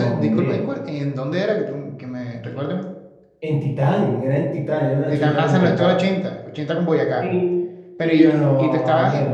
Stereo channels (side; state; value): both; identical; correlation 1.00